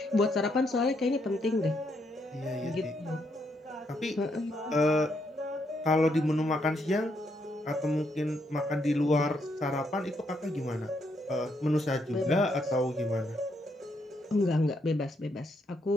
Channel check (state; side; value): normal; both; correlation 0.76